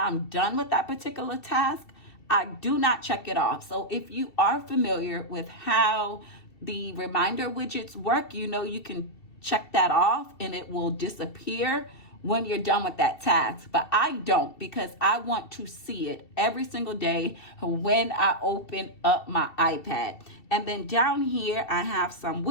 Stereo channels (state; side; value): late; right; 2.7 ms